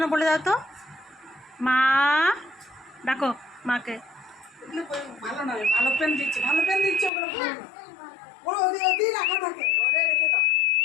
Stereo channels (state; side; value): drops out; right; at 7.1 s